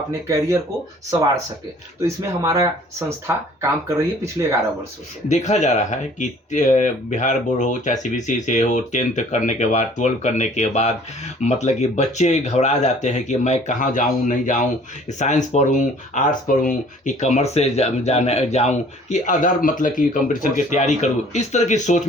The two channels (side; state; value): both; normal; correlation 0.53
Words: कैरियर को संवार सके। तो इसमें हमारा संस्था काम कर रही है पिछले 11 वर्षों से। देखा जा रहा है कि बिहार बोर्ड हो चाहे CBSE से हो, 10th करने के बाद, 12 करने के बाद मतलब कि बच्चे घबरा जाते हैं कि मैं कहाँ जाऊँ, नहीं जाऊँ, साइंस पढ़ूँ, आर्ट्स पढ़ूँ कि कॉमर्स से जाऊं कि अदर मतलब कि कंपटीशन की तैयारी करूं। इस तरह की सोच